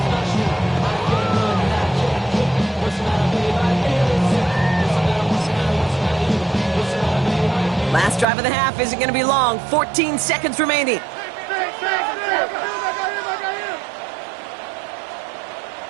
Last drive of the half isn't going to be long. 14 seconds remaining.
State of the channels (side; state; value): left; drops out; at 8.2 s